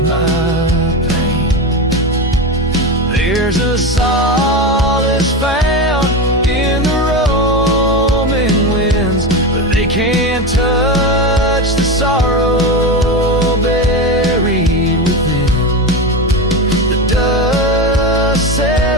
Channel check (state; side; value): normal; both; correlation 0.19